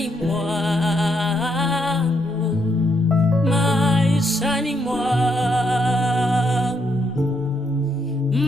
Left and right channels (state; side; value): normal; both; correlation 0.76